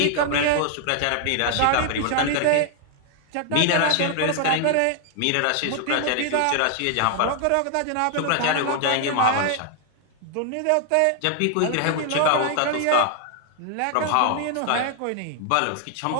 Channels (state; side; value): different; both; correlation 0.00